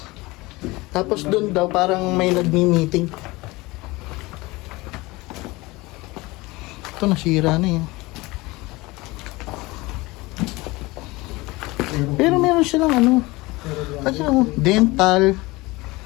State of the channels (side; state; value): right; quieter; 21.9 dB